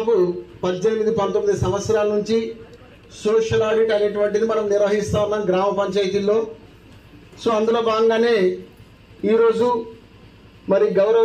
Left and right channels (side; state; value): both; identical; correlation 1.00